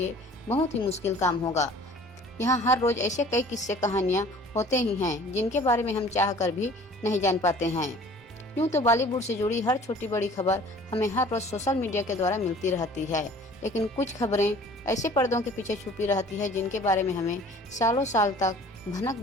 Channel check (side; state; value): both; normal; correlation 0.49